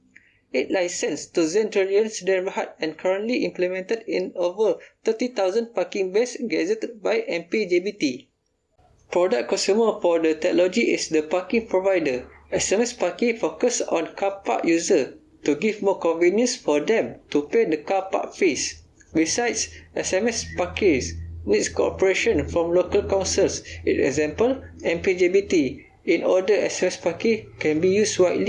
It licensed to Zentralian Sdn Bhd and currently implemented in over 30,000 parking bays gazetted by MPJBT. Product consumer for the technology is the parking provider. SMS Parkir focus on car park user to give more convenience for them to pay the car park fees. Besides, SMS Parkir needs cooperation from local councils, in example, MPJBT, in order SMS Parkir can be used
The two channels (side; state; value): both; identical; correlation 1.00